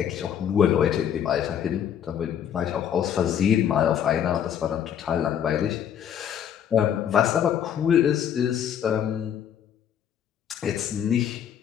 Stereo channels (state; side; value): quieter; right; 9.2 dB